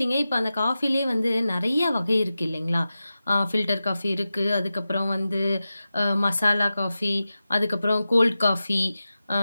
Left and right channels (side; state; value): both; inverted; correlation -0.94